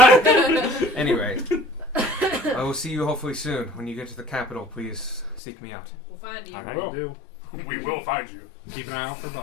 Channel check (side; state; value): right; drops out; at 5.4 s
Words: Anyway, I will see you hopefully soon. When you get to the capital, please seek me out. We'll find you. I I will. do. We will find you. Keep an eye out for